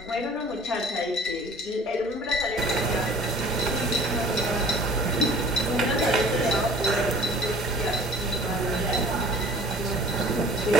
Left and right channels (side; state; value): both; normal; correlation 0.48